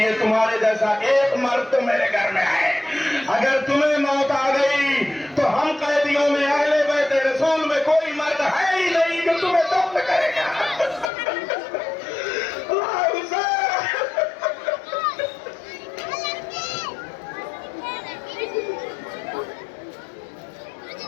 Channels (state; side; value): drops out; right; at 11.1 s